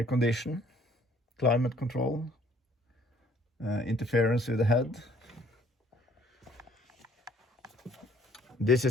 condition, climate control, interference with the head. This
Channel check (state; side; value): normal; both; correlation 0.59